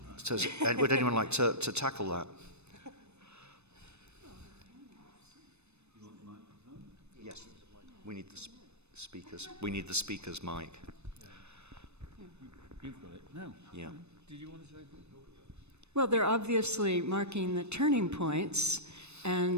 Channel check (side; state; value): left; late; 0.81 ms